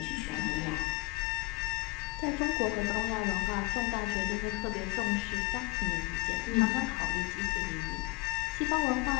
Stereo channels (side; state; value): right; quieter; 26.6 dB